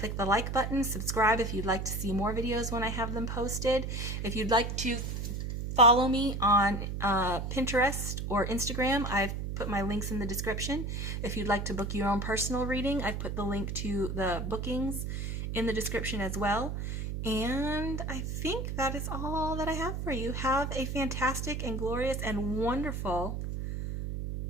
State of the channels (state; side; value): noise; right; hum, 3 dB below the sound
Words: the like button. Subscribe if you'd like to see more videos when I have them posted. If you'd like to follow me on Pinterest or Instagram, I've put my links in the description. If you'd like to book your own personal reading, I've put the link to the bookings in the description as well. And I think that is all that I have for you. Have a fantastic and glorious and wonderful,